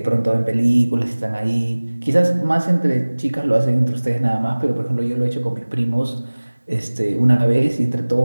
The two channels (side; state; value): both; inverted; correlation -1.00